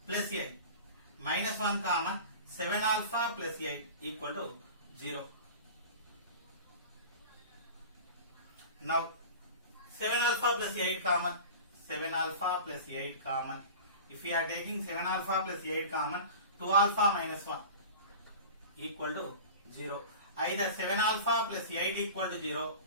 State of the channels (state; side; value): inverted; both; correlation -0.36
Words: plus 8 minus 1 common, 7 alpha plus 8 equal to 0. Now 7 alpha plus 8 common, 7 alpha plus 8 common. If we are taking 7 alpha plus 8 common, 2 alpha minus 1 equal to 0. Either 7 alpha plus 8 equal to 0